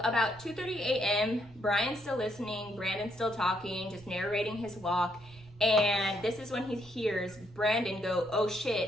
about 2:30 a.m., Brian's still listening, Brandon's still talking, just narrating his walk. And this is when he hears Brandon go, "Oh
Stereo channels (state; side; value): noise; right; rumble, 23 dB below the sound